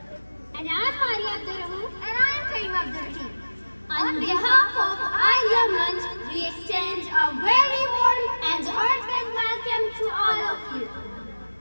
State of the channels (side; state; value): both; inverted; correlation -1.00